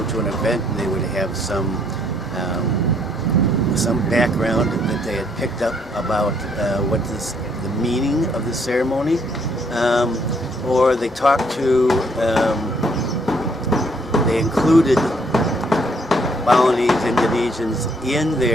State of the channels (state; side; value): normal; both; correlation 0.67